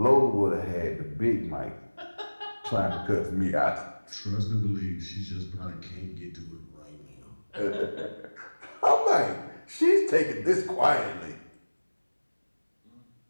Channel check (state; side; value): inverted; both; correlation -1.00